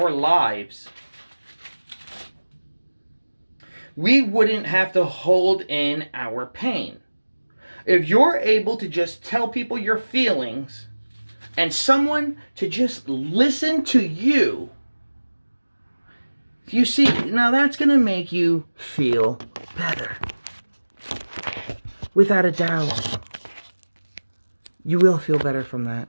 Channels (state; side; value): inverted; both; correlation -1.00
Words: lives, we wouldn't have to hold in our pain. If you're able to just tell people your feelings and someone to just listen to you, you see, now that's going to make you feel better. Without a doubt. You will feel better from that.